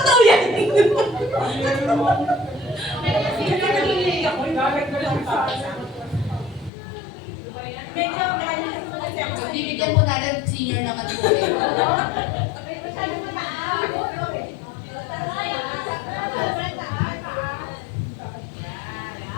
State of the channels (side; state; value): right; drops out; at 6.7 s